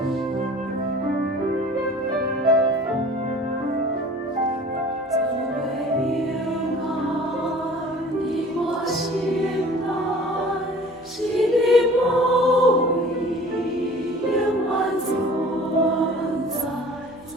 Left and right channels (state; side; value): normal; both; correlation 0.46